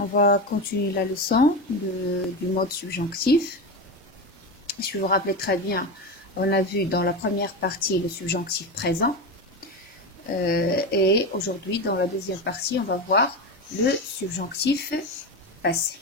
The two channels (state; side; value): normal; both; correlation 0.19